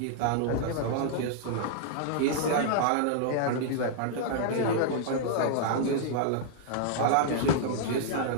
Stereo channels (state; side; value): different; both; correlation -0.01